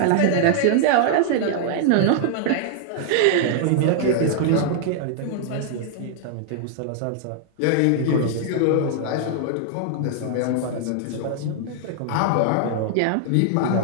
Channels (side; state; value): both; different; correlation 0.00